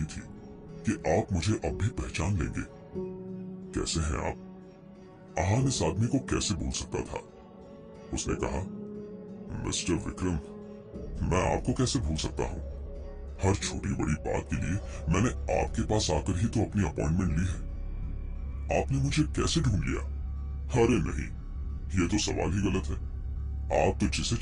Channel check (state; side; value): identical; both; correlation 1.00